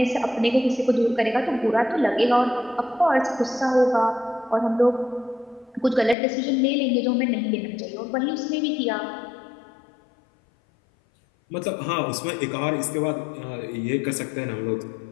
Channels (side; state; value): right; drops out; at 6.2 s